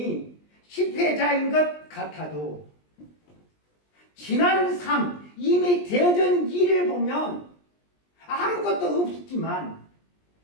실패자인 것 같아도 지난 삶, 이미 되어진 일을 보면 아무것도 없지만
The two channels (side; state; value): right; late; 20 ms